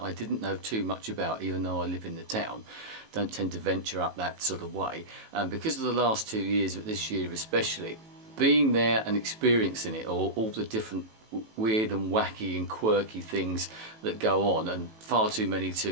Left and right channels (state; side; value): late; left; 18 ms